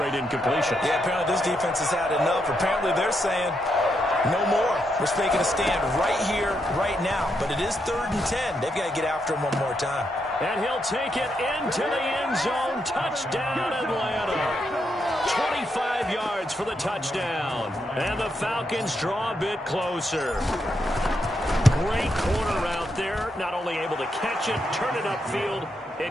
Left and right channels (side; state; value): both; normal; correlation 0.81